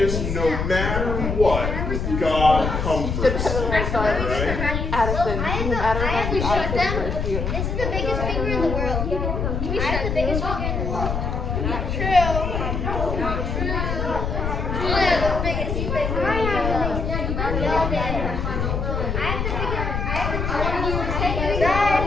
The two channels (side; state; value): left; noise; rumble, 2 dB below the sound